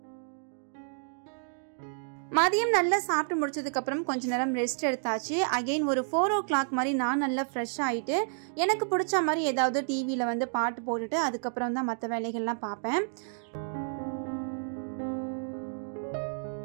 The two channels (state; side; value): silent; left; digital silence